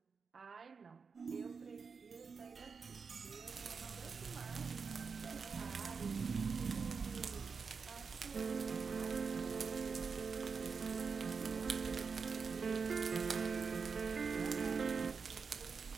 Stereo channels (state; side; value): quieter; left; 5.3 dB